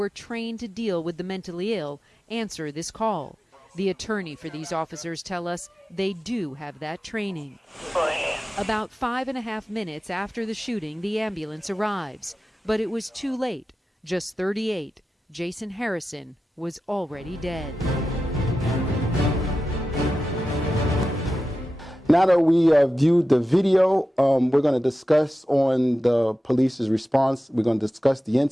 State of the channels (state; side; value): normal; both; correlation 0.93